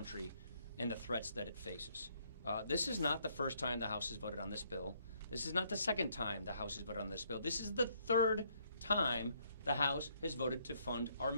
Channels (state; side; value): inverted; both; correlation -0.69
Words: and the threats that it faces. This is not the first time the House has voted on this bill. This is not the second time the House has voted on this bill. This is the third time the House has voted to fund our